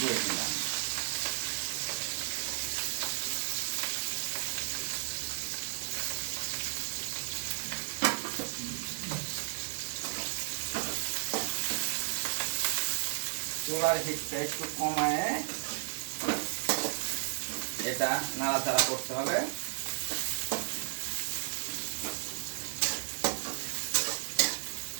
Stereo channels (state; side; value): silent; left; digital silence